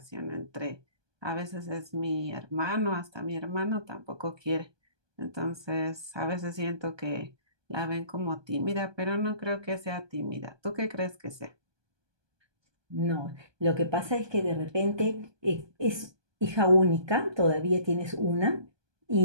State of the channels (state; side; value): late; left; 1.2 ms